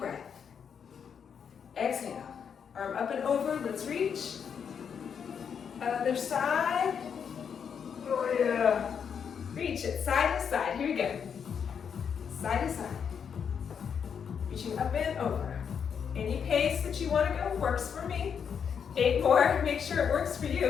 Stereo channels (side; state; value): right; quieter; 7.2 dB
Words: Exhale. Arm up and over. Let's reach. Other side. Oh yeah. Reach it. Side to side. Here we go. Side to side. Reaching up and over. Any pace that you want to go works for me. 8 more. Make sure it works for